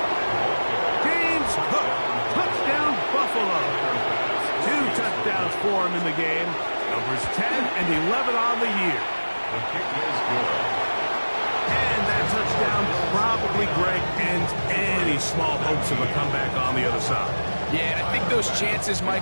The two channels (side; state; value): both; inverted; correlation -1.00